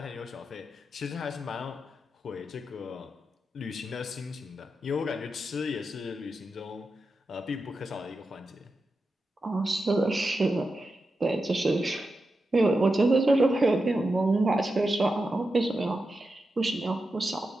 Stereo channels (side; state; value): both; normal; correlation 0.89